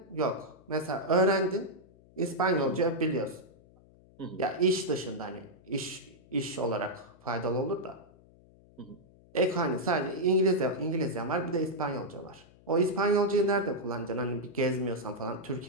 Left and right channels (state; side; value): noise; left; hum, 26 dB below the sound